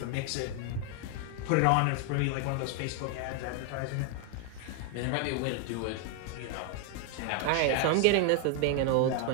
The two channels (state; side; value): different; both; correlation 0.01